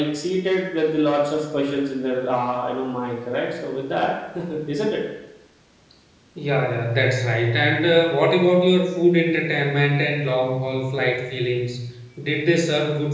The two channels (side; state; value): both; identical; correlation 1.00